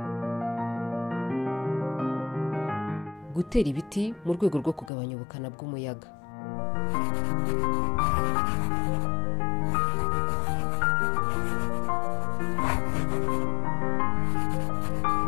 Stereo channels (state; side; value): drops out; right; at 4.9 s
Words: Gutera ibiti mu rwego rwo kugabanya ubukana bw'umuyaga.